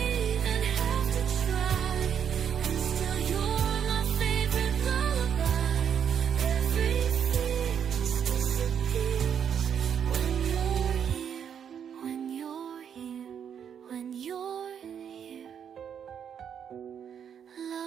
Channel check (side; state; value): left; quieter; 8.2 dB